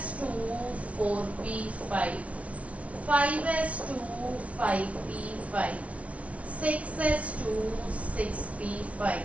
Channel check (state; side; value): late; left; 0.065 ms